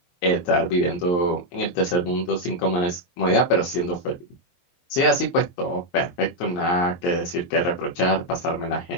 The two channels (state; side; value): late; right; 23 ms